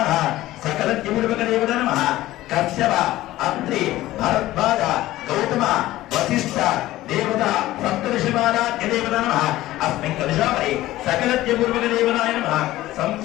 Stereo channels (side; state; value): right; quieter; 16.0 dB